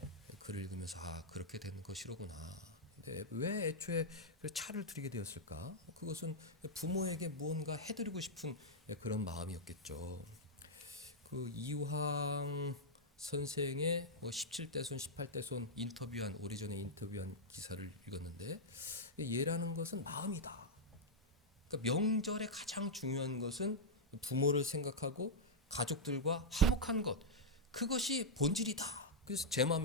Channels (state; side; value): normal; both; correlation -0.06